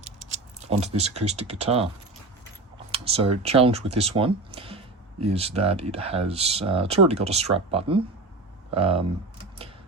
this acoustic guitar. So challenge with this one is that it has, it's already got a strap button,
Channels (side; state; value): left; quieter; 3.3 dB